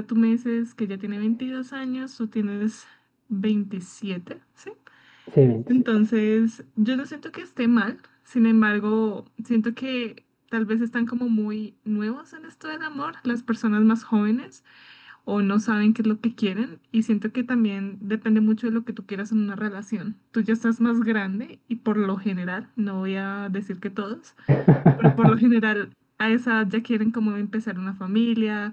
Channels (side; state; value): both; identical; correlation 1.00